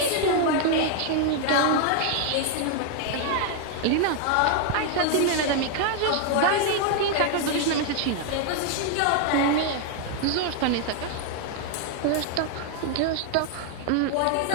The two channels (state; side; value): different; both; correlation 0.00